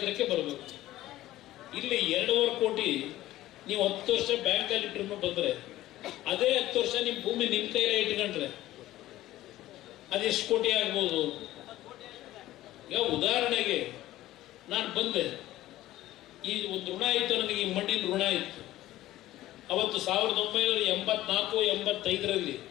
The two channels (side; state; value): right; quieter; 15.3 dB